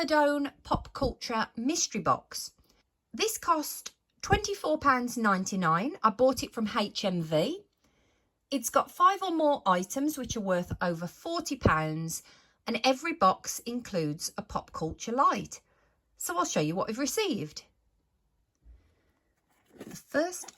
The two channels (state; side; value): identical; both; correlation 1.00